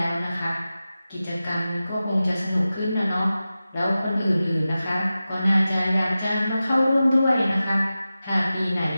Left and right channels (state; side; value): inverted; both; correlation -0.94